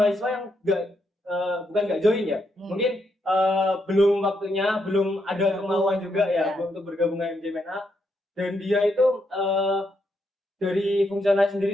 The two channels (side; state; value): both; normal; correlation 0.79